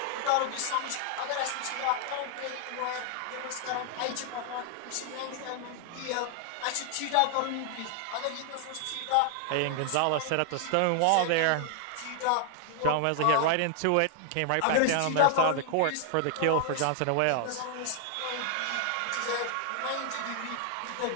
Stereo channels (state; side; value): different; both; correlation 0.00